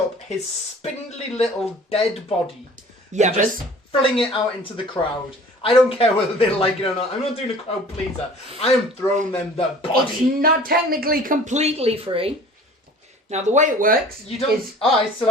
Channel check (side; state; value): both; normal; correlation 0.47